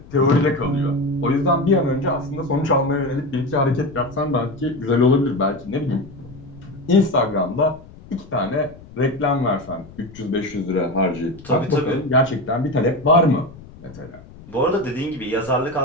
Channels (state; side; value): noise; left; rumble, 20 dB below the sound